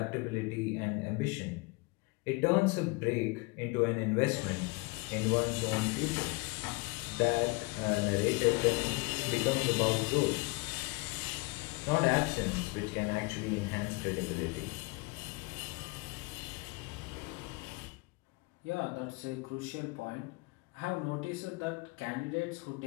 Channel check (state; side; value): quieter; right; 27.0 dB